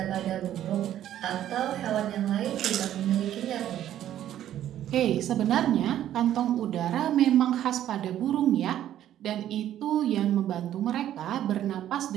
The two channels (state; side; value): quieter; left; 11.7 dB